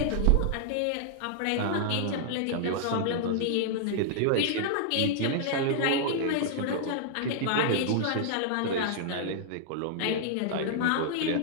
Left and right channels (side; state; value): both; different; correlation -0.01